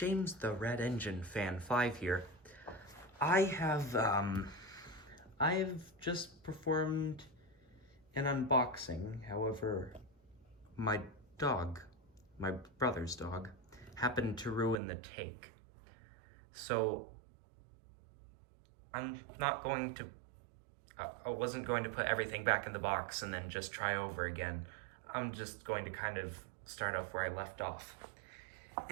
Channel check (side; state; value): left; drops out; at 14.8 s